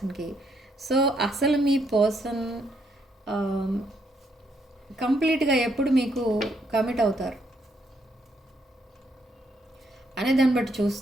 సో అసలు మీ పర్సన్ కంప్లీట్గా ఎప్పుడు మీకు కమిట్ అవుతారు అనే దాన్ని బట్టి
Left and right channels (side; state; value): both; normal; correlation 0.74